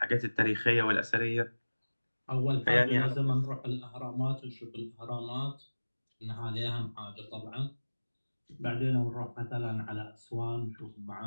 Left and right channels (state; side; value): inverted; both; correlation -1.00